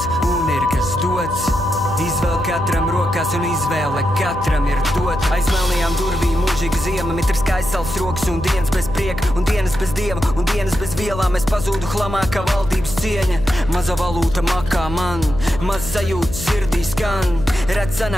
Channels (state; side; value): noise; left; hum, 9 dB below the sound